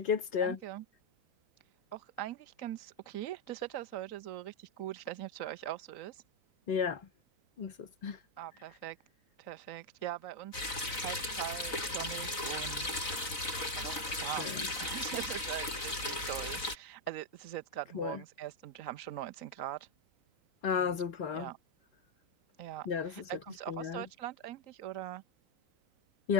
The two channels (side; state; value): right; late; 4.0 ms